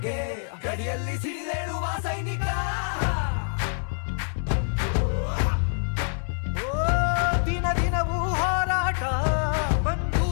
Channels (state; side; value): silent; right; 61 dB below the other